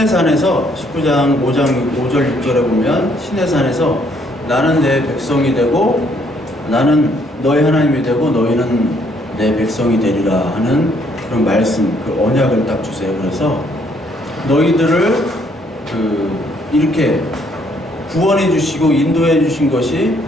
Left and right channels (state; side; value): normal; both; correlation 0.68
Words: 19장 5절 6절에 보면 시내산에서 나는 내 백성이 되고 나는 너희 하나님이 되고 너희는 내 백성이 되리라 하는 그런 말씀, 그 언약을 딱 주세요. 그래서 너희들을 이렇게 구원해 주시고 인도해 주신 것이